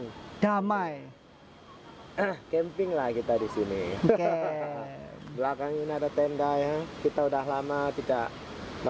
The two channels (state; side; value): identical; both; correlation 1.00